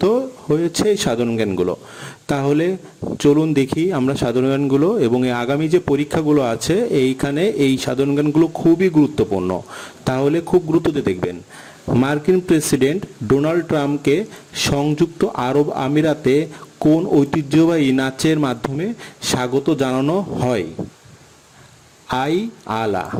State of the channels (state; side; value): identical; both; correlation 1.00